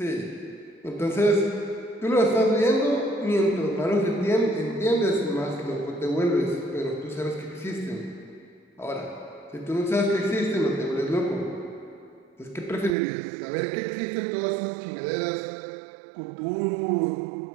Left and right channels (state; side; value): drops out; left; at 13.0 s